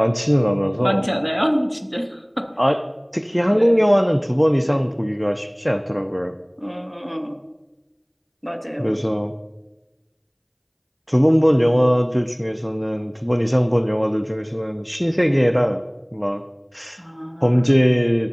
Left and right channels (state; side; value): identical; both; correlation 1.00